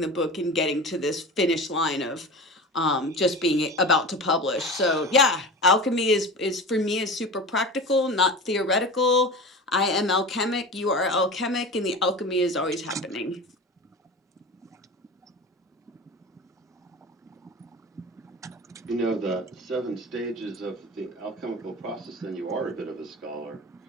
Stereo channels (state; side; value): normal; both; correlation 0.32